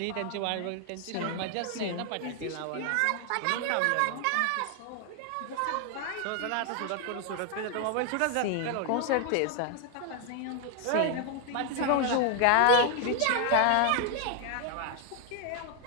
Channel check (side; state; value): both; different; correlation 0.00